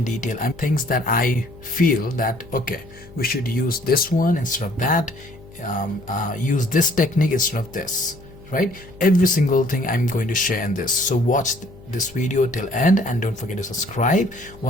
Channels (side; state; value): left; noise; hum, 21 dB below the sound